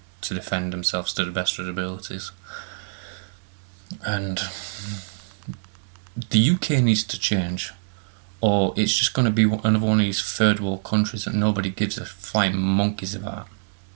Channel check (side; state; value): left; silent; digital silence